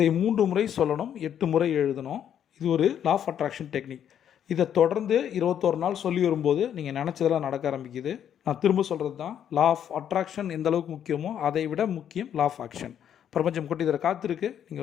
3 முறை சொல்லணும், 8 முறை எழுதணும். இது ஒரு லா ஆஃப் அட்ராக்ஷன் டெக்னிக். இதை தொடர்ந்து 21 நாள் சொல்லி வரும்போது நீங்கள் நினச்சதெல்லாம் நடக்க ஆரம்பிக்குது. நான் திரும்ப சொல்கிறது தான், லா ஆஃப் அட்ராக்ஷன் எந்த அளவுக்கு முக்கியமோ அதை விட முக்கியம் லா ஆஃப் ஆக்ஷன். பிரபஞ்சம் கொட்டி தர காத்திருக்கு. நீங்கள்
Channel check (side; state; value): right; quieter; 9.4 dB